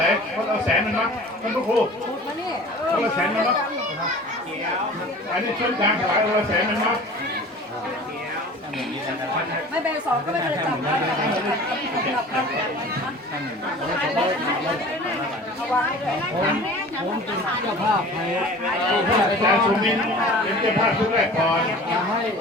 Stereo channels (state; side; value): normal; both; correlation 0.42